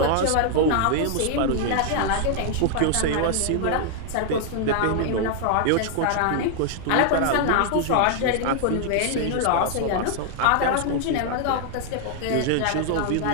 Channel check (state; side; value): different; both; correlation 0.00